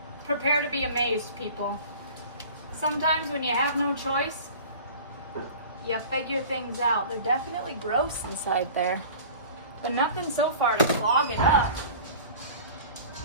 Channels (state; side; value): inverted; both; correlation -0.41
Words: Prepare to be amazed, people. Sometimes when you have no choice, you figure things out. They're definitely gross inside there, but nothing so far to clog it up.